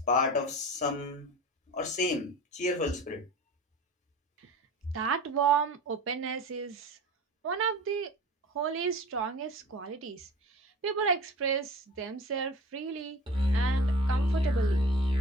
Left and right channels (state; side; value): normal; both; correlation 0.38